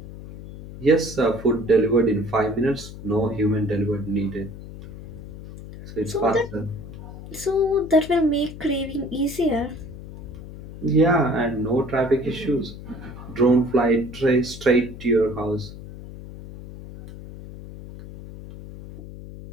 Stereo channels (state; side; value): noise; left; hum, 13 dB below the sound